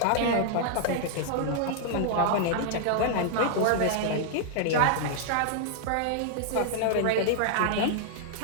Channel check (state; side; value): different; both; correlation -0.01